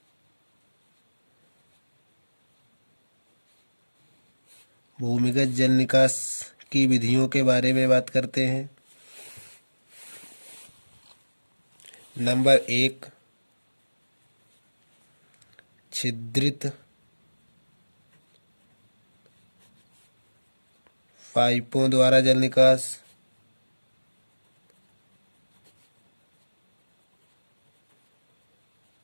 भूमिगत जल निकास की विधियों के बारे में बात करते हैं। नंबर 1, छिद्रित पाइपों द्वारा जल निकास।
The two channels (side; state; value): both; inverted; correlation -1.00